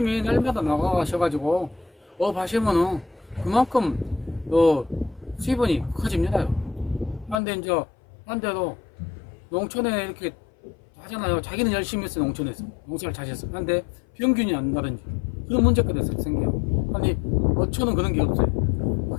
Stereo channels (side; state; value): right; drops out; at 7.4 s